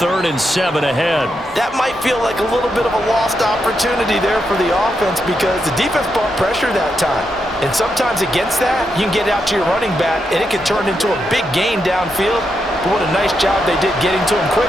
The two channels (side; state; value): both; normal; correlation 0.83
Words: and 7 ahead. That might feel like a little bit of a lost opportunity there for the offense because the defense brought pressure that time. And sometimes against that, you can get out to your running back, and it can turn into a big gain downfield. But what a nice job they did getting to him